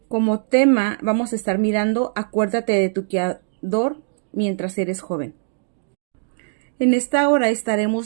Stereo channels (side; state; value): left; silent; digital silence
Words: Como tema vamos a estar mirando, acuérdate de tu Criador mientras eres joven. En esta hora